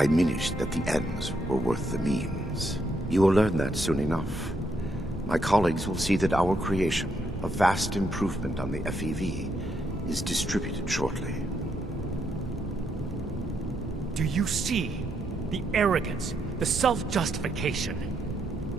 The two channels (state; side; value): normal; both; correlation 0.78